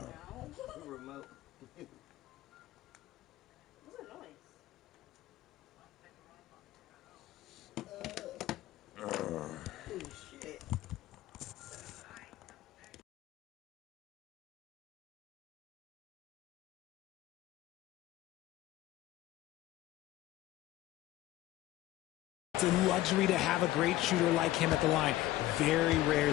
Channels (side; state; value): right; quieter; 15.4 dB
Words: Remote. What's that noise? Oh, shit. It's a luxury to have a great shooter like him at the line. Very